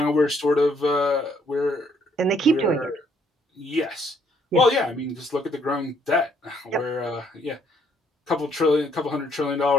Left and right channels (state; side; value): normal; both; correlation 0.67